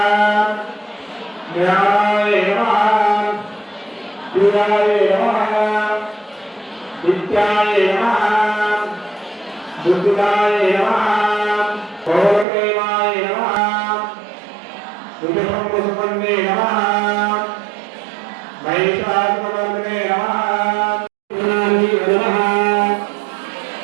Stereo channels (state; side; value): drops out; left; at 12.5 s